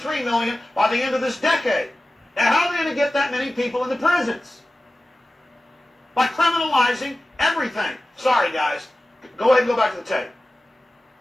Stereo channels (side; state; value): both; normal; correlation 0.95